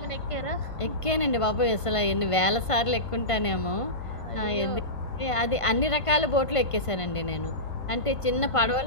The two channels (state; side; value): late; right; 1.5 ms